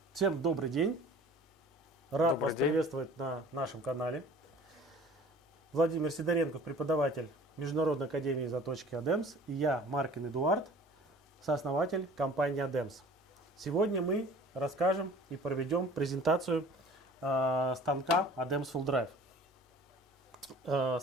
Всем добрый день. Рад Добрый вас день. приветствовать на нашем канале. Владимир Сидоренков, преподаватель Международной академии заточки ADEMS, и я, Маркин Эдуард, сооснователь компании ADEMS. Сегодня мы расскажем и проведем презентацию станка ADEMS Full Drive.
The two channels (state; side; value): normal; both; correlation 0.46